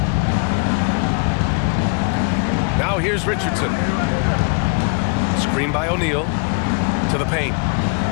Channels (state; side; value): quieter; right; 35.7 dB